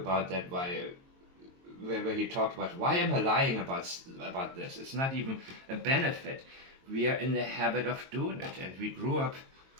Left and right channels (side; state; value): left; late; 22 ms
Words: that, where he talked about, why am I lying about this? It's not even a benefit. We are in the habit of doing it, and we grew up